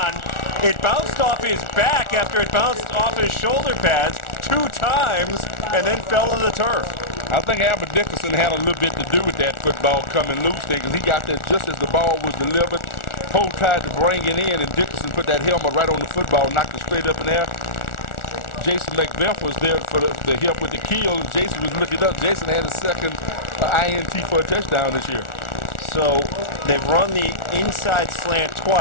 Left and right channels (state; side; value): late; right; 1.4 ms